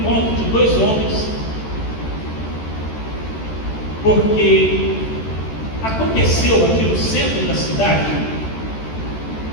de dois homens, porque aconteceu aqui no centro da cidade,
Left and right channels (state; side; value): late; right; 14 ms